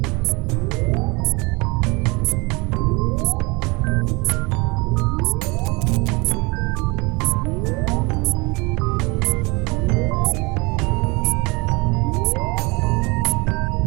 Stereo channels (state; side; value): quieter; left; 26.4 dB